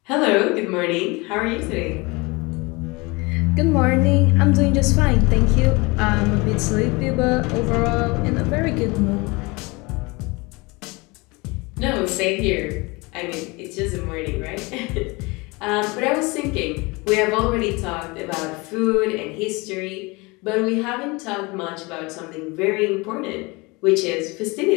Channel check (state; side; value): quieter; right; 25.6 dB